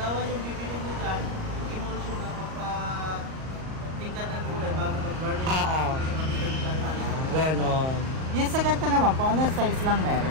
yung bibili nyo dyan. Emulsion na magpa-tingkat ng kulay bago mag-varnish. Oo. Kasi kapitan siya naman. Ganon. Yung sa ganito naman po, ano size lang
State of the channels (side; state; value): left; late; 38 ms